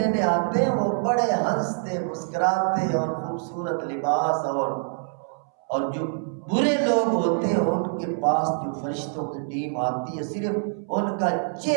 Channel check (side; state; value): left; silent; 62 dB below the other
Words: آتے ہیں وہ بڑے ہنستے مسکراتے اور خوبصورت لباس اور جو برے لوگ ہوتے ہیں ان کے پاس جو فرشتوں کی ٹیم آتی ہے، صرف ان کا